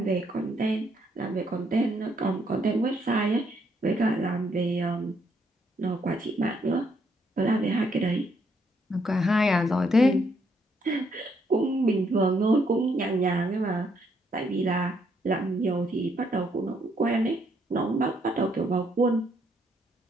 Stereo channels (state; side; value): normal; both; correlation 0.72